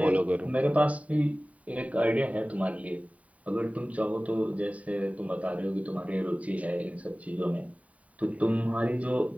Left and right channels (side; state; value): left; late; 0.068 ms